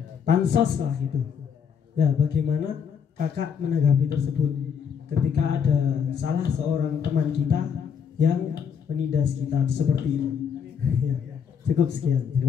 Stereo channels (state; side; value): quieter; right; 7.1 dB